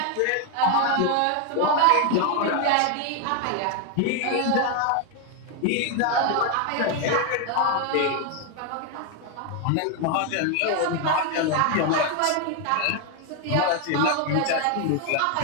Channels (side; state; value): both; different; correlation 0.01